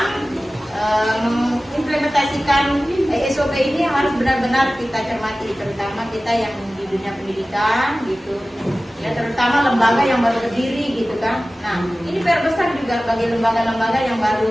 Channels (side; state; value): both; normal; correlation 0.96